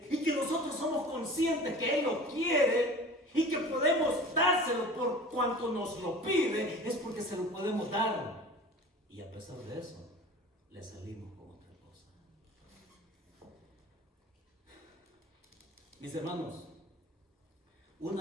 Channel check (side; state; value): both; normal; correlation 0.40